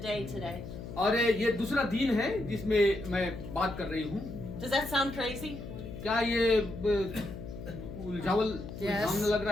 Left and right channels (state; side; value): noise; left; hum, 10 dB below the sound